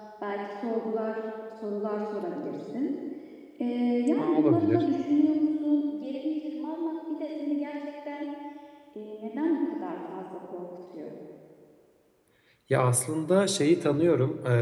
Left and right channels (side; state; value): both; identical; correlation 1.00